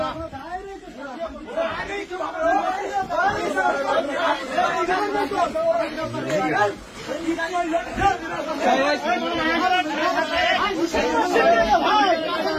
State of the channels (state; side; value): identical; both; correlation 1.00